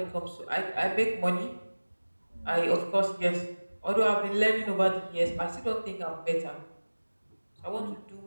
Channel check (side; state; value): both; inverted; correlation -1.00